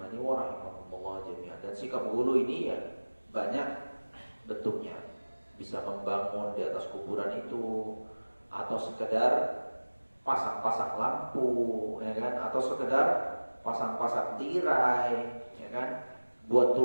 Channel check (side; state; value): both; inverted; correlation -1.00